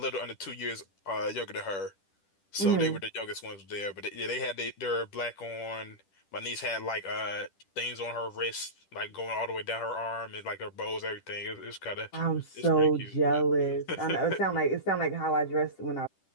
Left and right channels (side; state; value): right; late; 10 ms